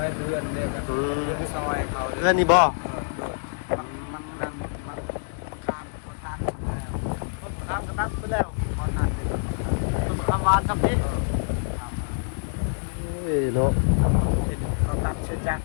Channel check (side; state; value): right; silent; digital silence